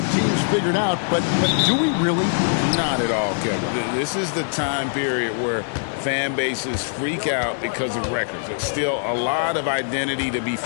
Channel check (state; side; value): silent; right; digital silence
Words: teams figured out, but do we really? Not at all, Kevin. This is the time period where fan bases freak out because of records. There's still a lot of identity to be